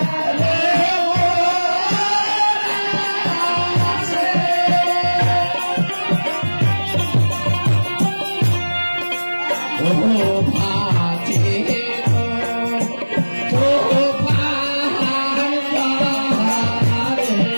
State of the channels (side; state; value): both; inverted; correlation -1.00